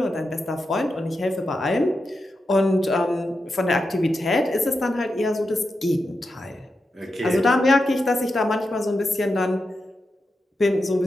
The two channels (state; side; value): normal; both; correlation 0.88